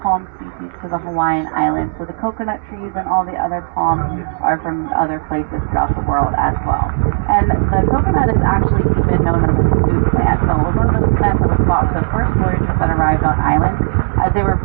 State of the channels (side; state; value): left; silent; digital silence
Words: palm species to the Hawaiian Islands. So the coconut trees and all the other palms are from other places throughout the world as well. And the coconut is actually even known as a food plant. So one of those plants that was bought for the first voyagers that arrived on island, as they were